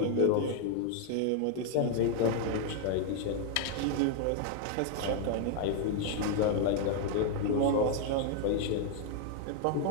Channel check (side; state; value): both; different; correlation 0.00